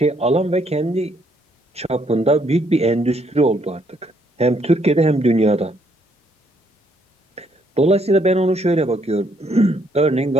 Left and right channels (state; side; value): normal; both; correlation 0.70